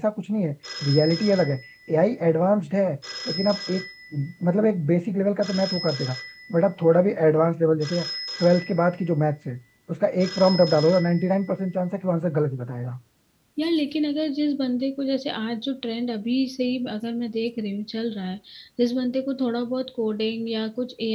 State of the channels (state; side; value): identical; both; correlation 1.00